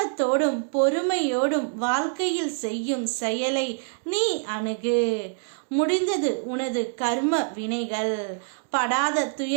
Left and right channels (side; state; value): left; silent; digital silence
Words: பொறுமையோடும் வாழ்க்கையில் செய்யும் செயலை நீ அணுகு. முடிந்தது உனது கர்ம வினைகள். படாத